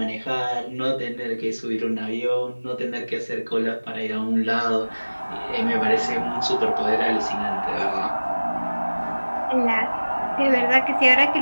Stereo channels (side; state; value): both; inverted; correlation -1.00